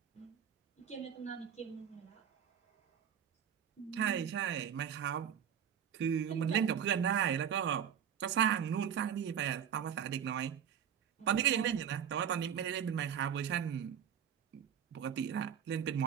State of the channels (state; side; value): quieter; left; 8.6 dB